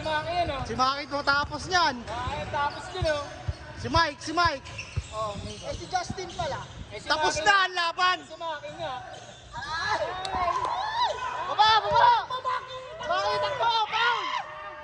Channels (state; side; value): identical; both; correlation 1.00